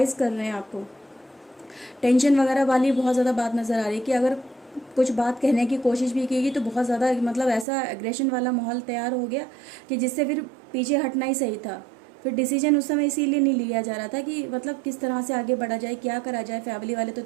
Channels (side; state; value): left; drops out; at 7.7 s